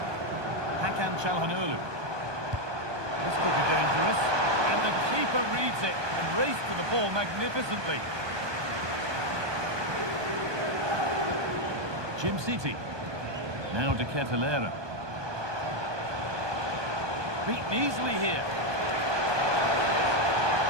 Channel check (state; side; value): late; left; 1.2 ms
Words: Hakan Çalhanoğlu. This could be dangerous. And the keeper reads it and raced to the ball magnificently. Jim City. Now De Ketelaere. Beaten easily here.